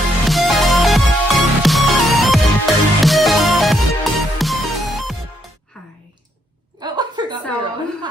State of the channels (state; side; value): normal; both; correlation 0.75